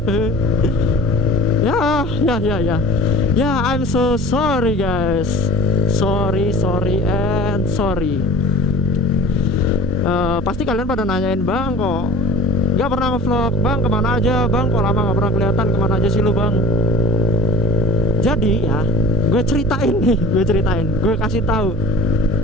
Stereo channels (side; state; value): both; normal; correlation 0.42